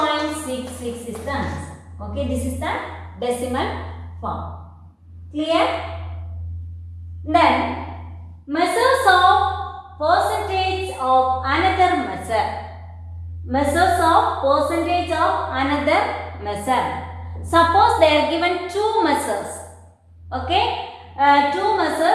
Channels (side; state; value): both; identical; correlation 1.00